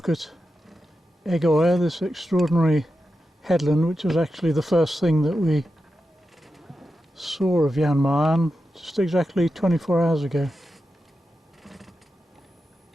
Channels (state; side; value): normal; both; correlation 0.90